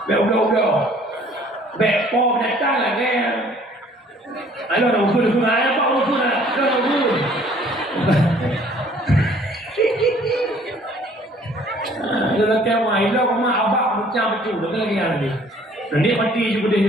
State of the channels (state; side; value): normal; both; correlation 0.56